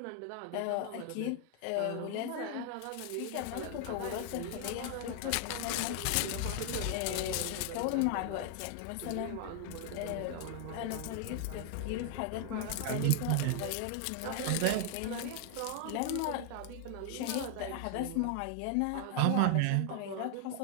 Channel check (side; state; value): both; different; correlation 0.00